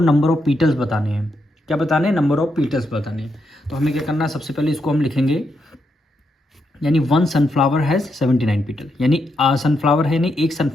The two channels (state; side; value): normal; both; correlation 0.81